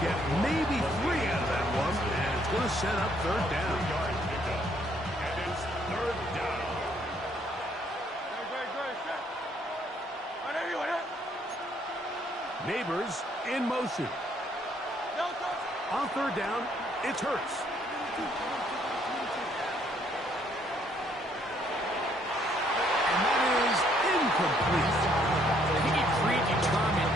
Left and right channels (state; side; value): normal; both; correlation 0.67